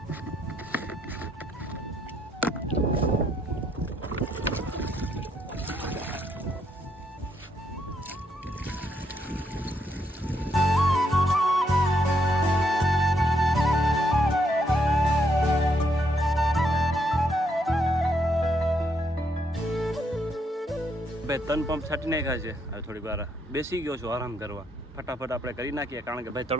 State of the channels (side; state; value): both; normal; correlation 0.75